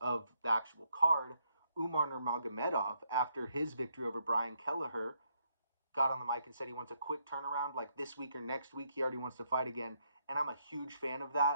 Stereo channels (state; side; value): inverted; both; correlation -0.75